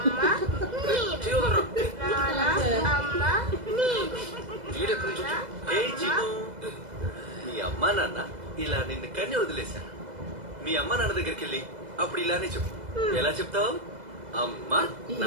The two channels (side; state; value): left; late; 2.0 ms